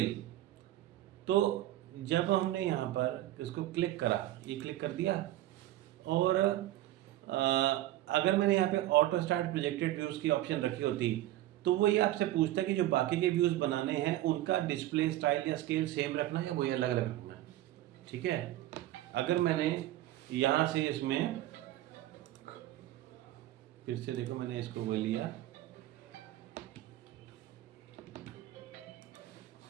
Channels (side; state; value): left; quieter; 14.7 dB